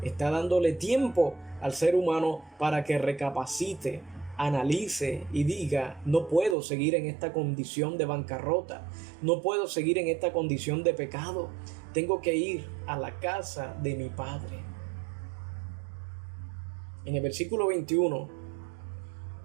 está dándole tiempo al ser humano para que recapacite, analice y diga: no puedo seguir en esta condición de bancarrota, no puedo seguir en esta condición de pecado, tengo que ir a la casa de mi Padre. En el versículo 21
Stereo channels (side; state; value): left; drops out; at 6.6 s